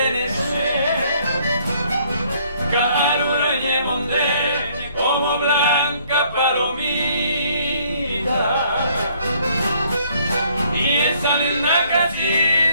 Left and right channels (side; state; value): both; inverted; correlation -0.63